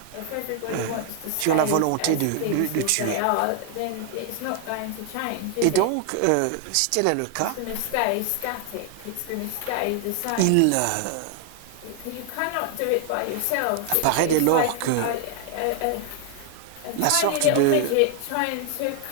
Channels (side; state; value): both; different; correlation 0.00